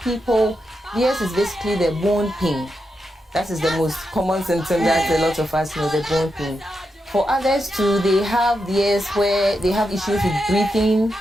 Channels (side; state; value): both; normal; correlation 0.86